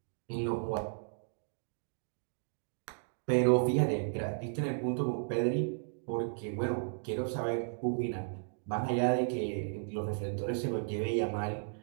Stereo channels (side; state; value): left; silent; digital silence